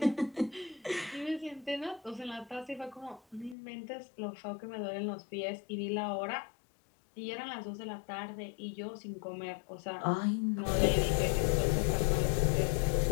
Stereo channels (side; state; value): right; drops out; at 3.6 s